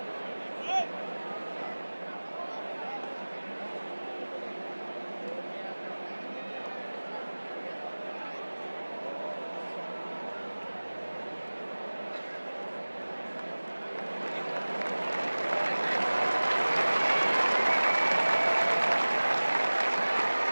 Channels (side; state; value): both; inverted; correlation -1.00